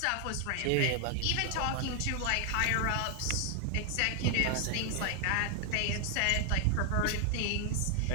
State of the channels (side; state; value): both; different; correlation 0.00